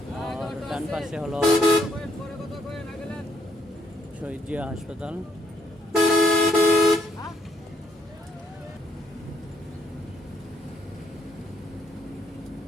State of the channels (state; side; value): normal; both; correlation 0.72